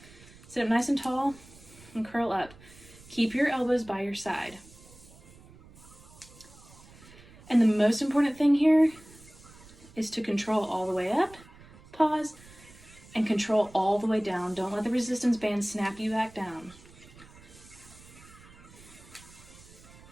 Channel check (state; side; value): noise; right; rumble, 22 dB below the sound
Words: Sit up nice and tall and curl up. Keep your elbows by your side. And the most important thing here is to control all the way up, pause, and control all the way down. Don't let the resistance band snap you back down.